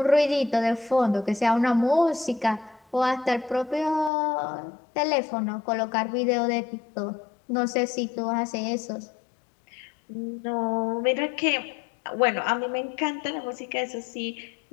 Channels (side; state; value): right; drops out; at 4.1 s